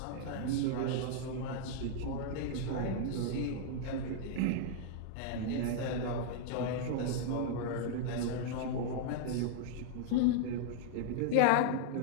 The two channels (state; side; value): different; both; correlation -0.01